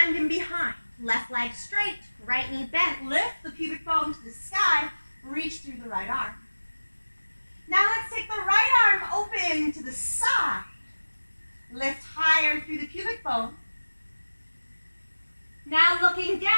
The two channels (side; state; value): both; inverted; correlation -1.00